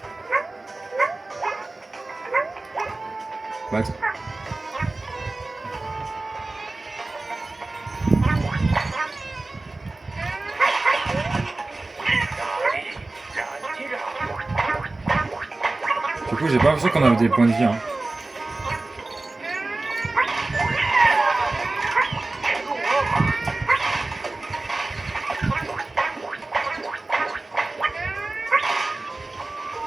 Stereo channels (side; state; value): left; quieter; 3.1 dB